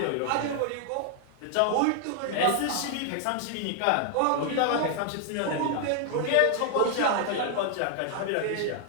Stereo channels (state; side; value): different; both; correlation 0.00